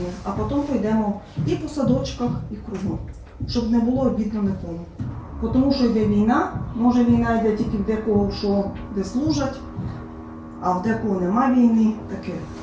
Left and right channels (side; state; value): both; identical; correlation 1.00